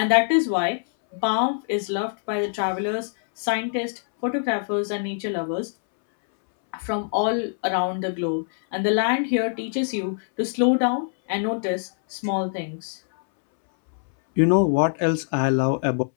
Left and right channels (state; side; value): silent; right; 63 dB below the other